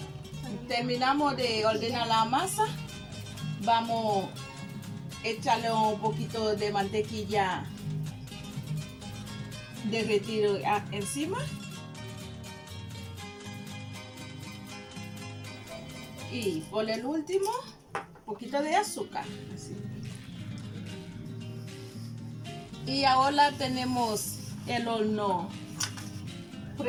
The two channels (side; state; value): both; identical; correlation 1.00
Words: Terminamos de ordenar la masa. Vamos échale un poquito de mantequilla derretido encima. Y por el último, un poquito de azúcar. Así. Y ahora tenemos el horno